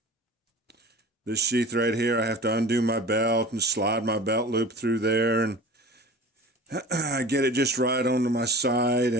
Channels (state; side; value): normal; both; correlation 0.38